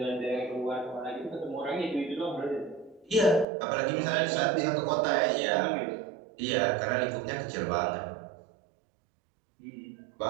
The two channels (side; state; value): left; drops out; at 3.5 s